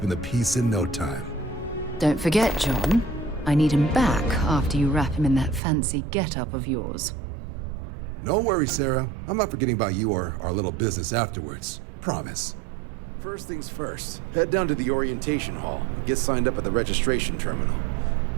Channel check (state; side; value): drops out; left; at 5.6 s